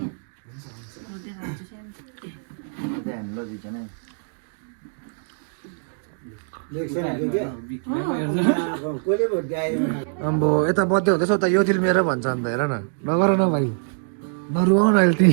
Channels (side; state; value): left; silent; digital silence